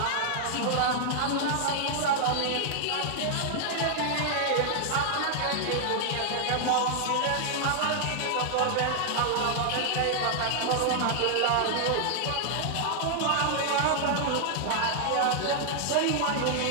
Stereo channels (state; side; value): different; both; correlation 0.00